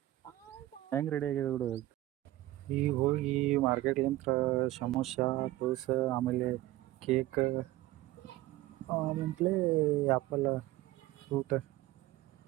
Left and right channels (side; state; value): left; quieter; 16.4 dB